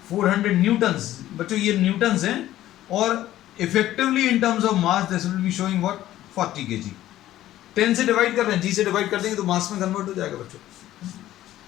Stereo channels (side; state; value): right; quieter; 13.9 dB